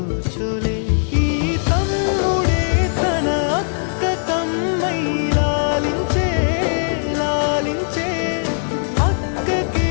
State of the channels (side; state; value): right; silent; 66 dB below the other